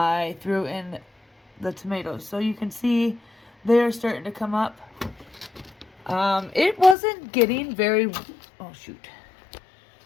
threw in the tomatoes. So you can see they're starting to come up. It wasn't getting very... Oh, shoot.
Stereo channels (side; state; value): right; drops out; at 7.0 s